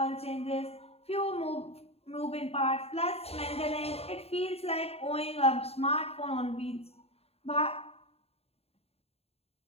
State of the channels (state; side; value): late; right; 0.29 ms